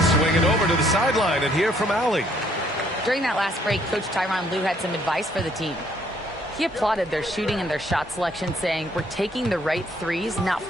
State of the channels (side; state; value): both; normal; correlation 0.66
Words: swing it over to the sideline and hear from Allie. During that last break, Coach Tyronn Lue had some advice for the team. He applauded their shooting and their shot selection, saying, "We're taking the right threes, not